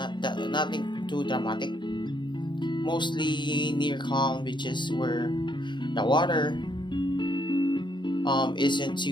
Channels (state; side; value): late; right; 0.22 ms